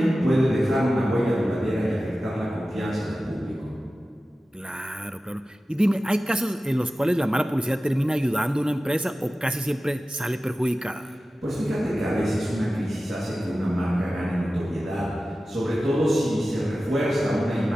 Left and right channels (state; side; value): normal; both; correlation 0.95